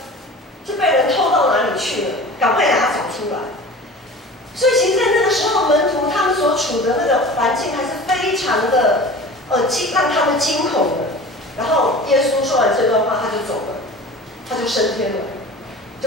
就被人偷到哪里去了？赶快把它找出来。所以其实，在那个时候，门徒他们所处的那个环境还是非常的让他们惊恐的。然后耶稣说完这段话，他就走了，他就升天了，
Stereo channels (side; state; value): both; normal; correlation 0.38